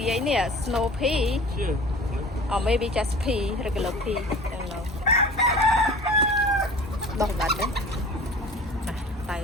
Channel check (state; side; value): normal; both; correlation 0.42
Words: ấy nè, snow pea, or maybe just pea, regular pea, I don't know. Đọc bạch đấy. À,